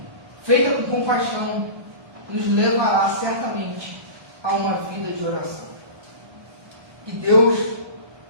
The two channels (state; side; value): late; left; 1.2 ms